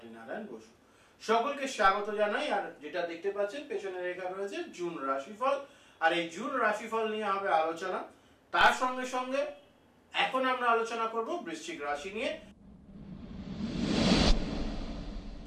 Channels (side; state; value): both; identical; correlation 1.00